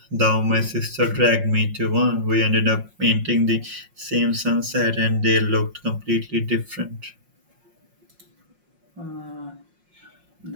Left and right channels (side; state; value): left; late; 5.5 ms